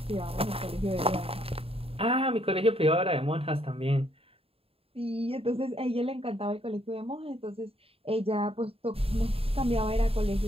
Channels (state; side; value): late; left; 0.28 ms